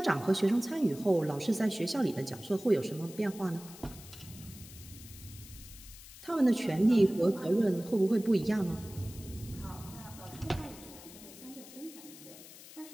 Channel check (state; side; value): noise; left; hiss, 17 dB below the sound